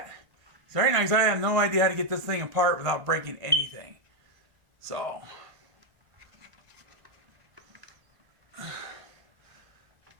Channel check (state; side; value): late; left; 1.4 ms